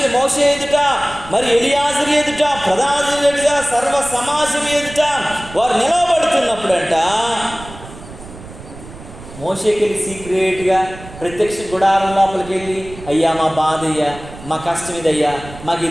మోషే ఎదుట, మరి ఎలియాజరు ఎదుట, ప్రధాన ఎదుట, సర్వ సమాజం ఎదుట వారు నిలబడుతున్నప్పుడంట మోషేకి వెళ్ళి సీక్రెట్గా ప్రత్యక్ష గుడారం లోపలికి వెళ్ళి, అయ్యా మా బాధ అయ్యా, మా కష్టం ఇదయ్యా, మాకు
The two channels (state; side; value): noise; right; rumble, 16 dB below the sound